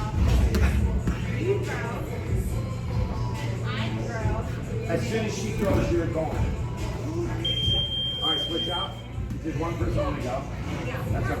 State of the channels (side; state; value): both; identical; correlation 1.00